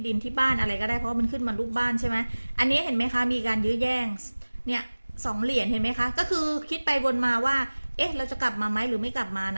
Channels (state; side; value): inverted; both; correlation -1.00